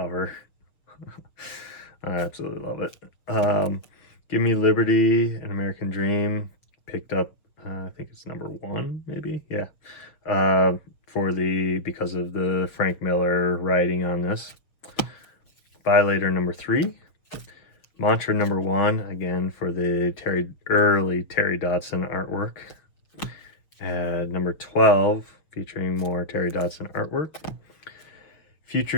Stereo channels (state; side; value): late; right; 6.7 ms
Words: I absolutely love it. Give Me Liberty, An American Dream. Picked up, I think it's number 1, maybe? Yeah. Because of the Frank Miller writing on this. Violator number 3. Mantra number 1, again for the early Terry Dodson artwork. Number 12, featuring more Terry Dodson artwork.